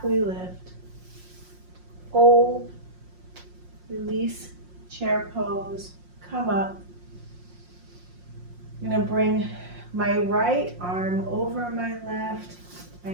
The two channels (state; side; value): late; left; 5.6 ms